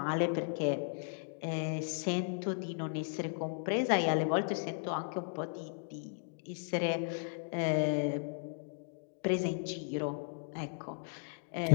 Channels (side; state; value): right; silent; digital silence